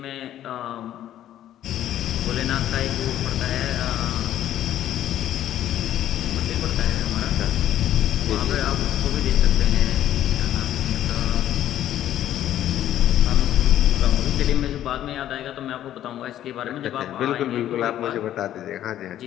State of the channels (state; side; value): quieter; right; 12.0 dB